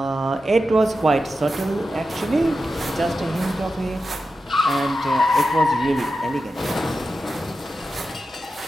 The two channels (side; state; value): both; normal; correlation 0.91